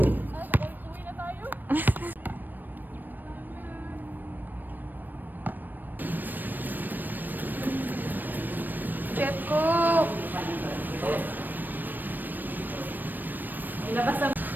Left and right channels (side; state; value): left; late; 0.091 ms